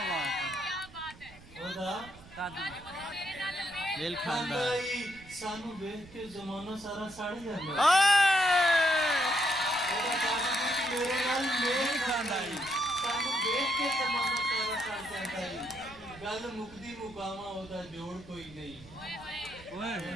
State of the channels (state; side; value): noise; right; rumble, 20 dB below the sound